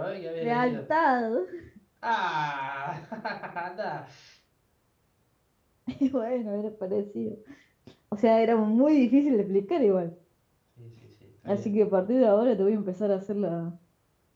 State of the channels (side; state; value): both; identical; correlation 1.00